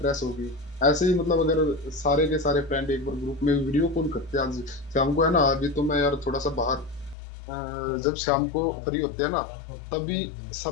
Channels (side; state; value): right; drops out; at 7.2 s